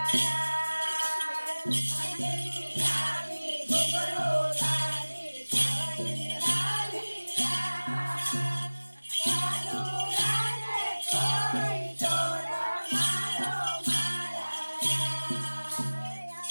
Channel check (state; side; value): inverted; both; correlation -1.00